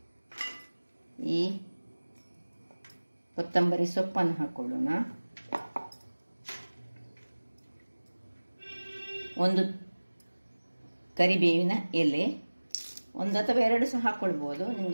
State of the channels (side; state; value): both; inverted; correlation -1.00